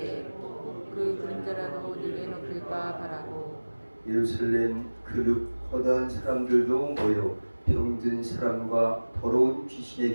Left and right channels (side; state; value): both; inverted; correlation -1.00